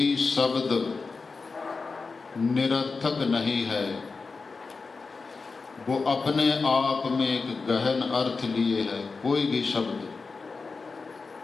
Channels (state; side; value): quieter; right; 4.4 dB